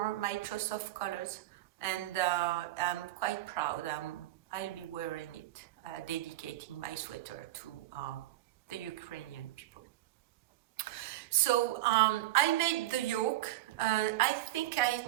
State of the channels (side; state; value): left; quieter; 15.9 dB